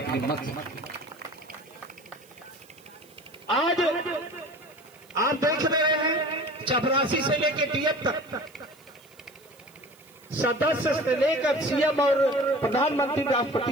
मत से। आज आप देख रहे हैं चपरासी से लेकर डीएम तक, सदस्य से लेकर सीएम और प्रधानमंत्री,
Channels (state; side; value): noise; right; hiss, 27 dB below the sound